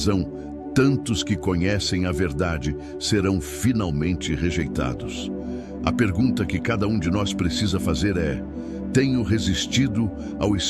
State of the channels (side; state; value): both; identical; correlation 1.00